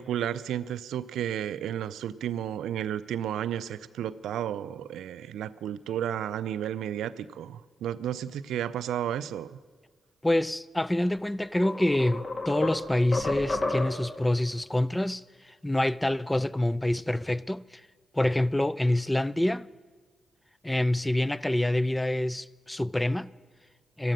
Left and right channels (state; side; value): normal; both; correlation 0.90